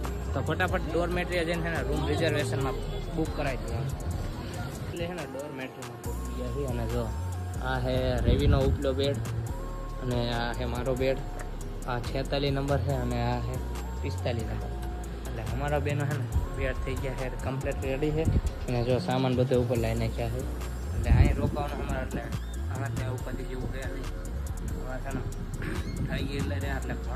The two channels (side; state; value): both; identical; correlation 1.00